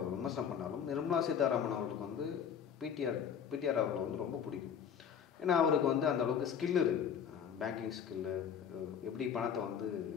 விமர்சனம் பண்ணாலும் நிர்மலா சீதாராமன் அவர்களுக்கு வந்து பிடிஆர் அவர்களை வந்து ரொம்ப பிடிக்கும். ஏன்னா அவருக்கு வந்து அந்த அளவுக்கு ஸ்கில் இருக்குது, பேங்கிங் ஸ்கில்லு, எப்படி பணத்தை வந்து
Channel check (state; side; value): quieter; right; 7.9 dB